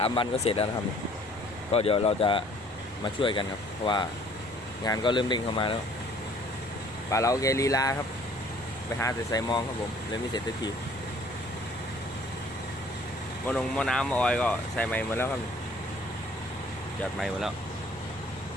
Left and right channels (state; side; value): normal; both; correlation 0.56